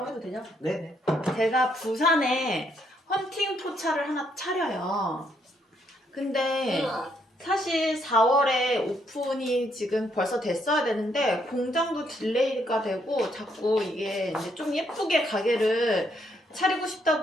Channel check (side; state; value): both; normal; correlation 0.73